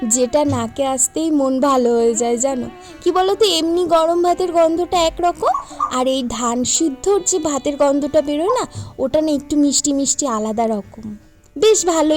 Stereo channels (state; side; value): identical; both; correlation 1.00